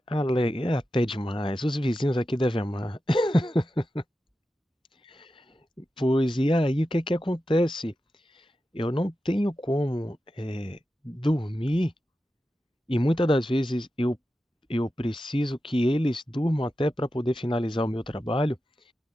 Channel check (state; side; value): normal; both; correlation 0.91